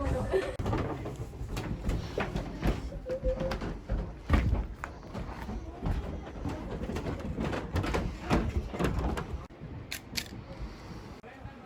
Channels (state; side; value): identical; both; correlation 1.00